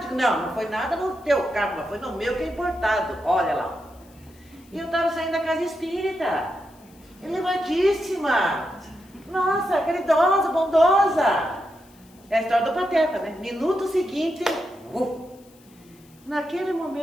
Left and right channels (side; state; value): left; noise; hiss, 29 dB below the sound